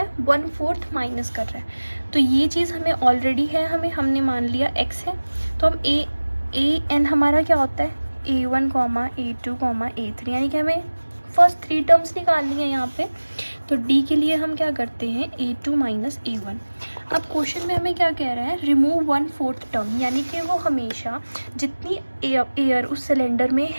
है, 1/4 माइनस कर रहा है। तो ये चीज़ हमें ऑलरेडी है, हमने मान लिया x है। तो हम ए एन हमारा क्या होता है, a1, a2, a3, यानी कि हमें फर्स्ट 3 टर्म्स निकालनी है यहाँ पे। तो d के लिए हम क्या करते हैं, a2 माइनस a1। अब क्वेश्चन में हमें क्या कह रहा है, रिमूव 1/4 टर्म, यानी कि वो हमेशा जितनी एयर उस सिलेंडर में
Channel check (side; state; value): both; inverted; correlation -1.00